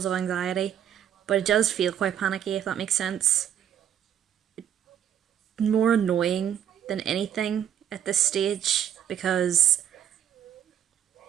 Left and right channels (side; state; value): left; quieter; 9.7 dB